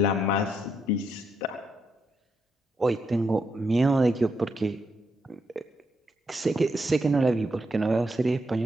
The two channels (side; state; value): both; normal; correlation 0.79